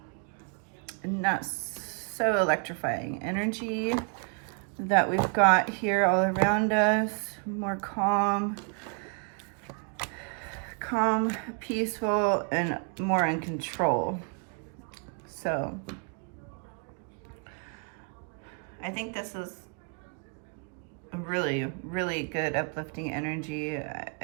Not so electrifying energy that we've got here all around us. More calm, peaceful, and more in control. So I think this is really, really good uplifting energy.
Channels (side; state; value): left; quieter; 39.7 dB